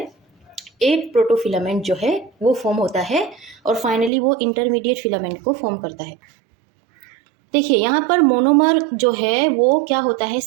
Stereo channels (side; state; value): left; drops out; at 4.1 s